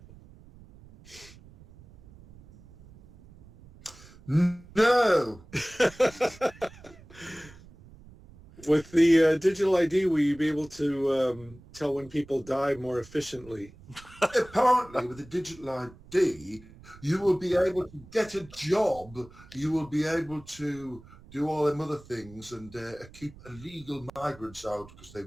No. With the digital ID, will you be able to tell when people die more efficiently? Apparently, with the digital ID, you will be able to get a job. You will be able to do all them other things and keep illegal migrants out because they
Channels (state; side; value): noise; right; rumble, 21 dB below the sound